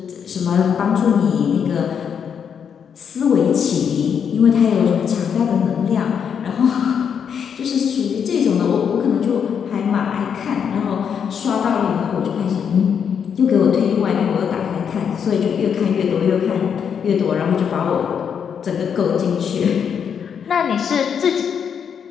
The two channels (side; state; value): right; quieter; 7.4 dB